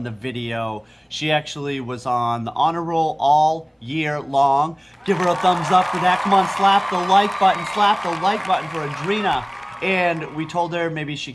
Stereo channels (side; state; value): both; identical; correlation 1.00